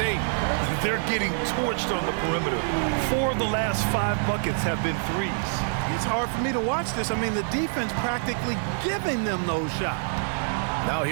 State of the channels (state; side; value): silent; left; digital silence